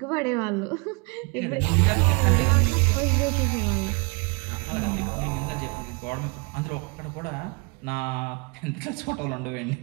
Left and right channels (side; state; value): left; quieter; 32.0 dB